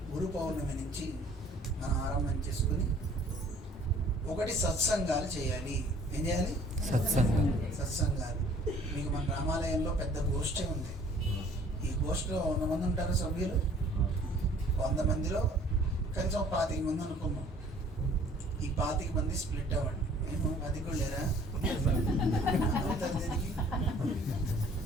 పౌర్ణమి నుంచి మనం ఆరంభం చేసుకుని ఒకటి సత్సంగాలు చేయాలి. ఏం చేయాలి? సత్సంగాలు. మీకు మన రామాలయంలో పెద్ద గోష్ఠి ఉంది. ఈ గోష్ఠిలో 100 మంది ఉంటారు సభ్యులు. 100 మందిలో కనీసం 25 మంది అనుకున్నాం. ఈ 25 మంది స్ప్లిట్ అవ్వండి. మేము 10 కూడా లేరా అవుతారు దీనికి?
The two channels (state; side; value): normal; both; correlation 0.54